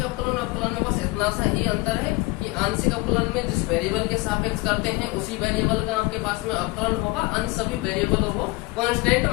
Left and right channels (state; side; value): quieter; right; 22.9 dB